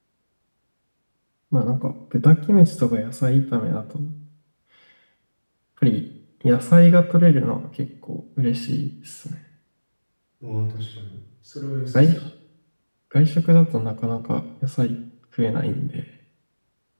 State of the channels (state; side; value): inverted; both; correlation -1.00